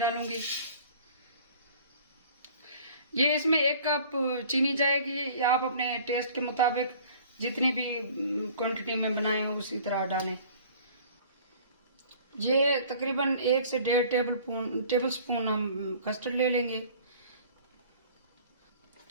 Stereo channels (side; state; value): both; inverted; correlation -0.49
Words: ये इसमें 1 कप चीनी जाएगी, या आप अपने टेस्ट के मुताबिक जितनी भी क्वांटिटी में बनाए उसी तरह डालें। ये तकरीबन 1 से 1.5 टेबल स्पून हम कस्टर्ड ले लेंगे।